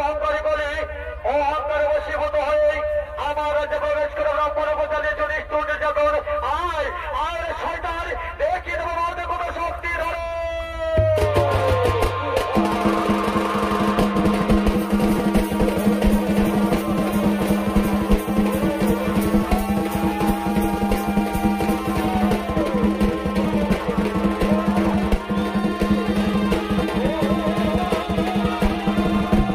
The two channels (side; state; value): both; identical; correlation 1.00